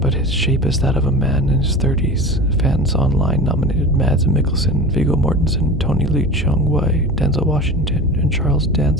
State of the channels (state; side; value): normal; both; correlation 0.32